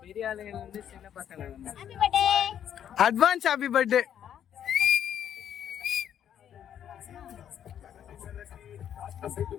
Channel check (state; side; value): quieter; right; 9.6 dB